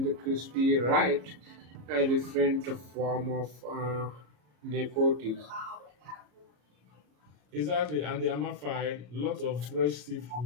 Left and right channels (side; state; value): left; late; 34 ms